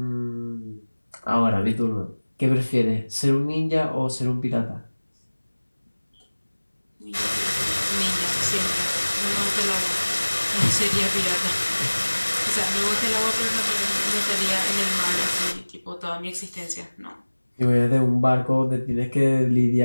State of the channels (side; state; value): both; inverted; correlation -1.00